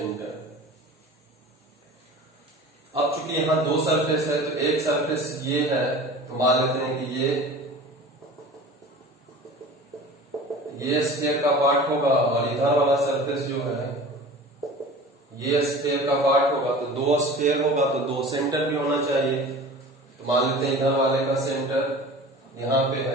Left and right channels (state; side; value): normal; both; correlation 0.39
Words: अब चूंकि यहाँ दो सरफेस है, तो एक सरफेस ये है, तो मान लेते हैं कि ये स्फीयर का पार्ट होगा और इधर वाला सरफेस जो है ये स्फीयर का पार्ट होगा। तो दो स्फीयर होगा तो दो सेंटर भी होना चाहिए। तो मान लेते हैं इधर वाले का सेंटर यहाँ पे